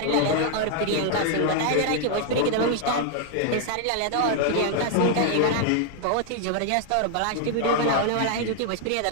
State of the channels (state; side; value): different; both; correlation 0.00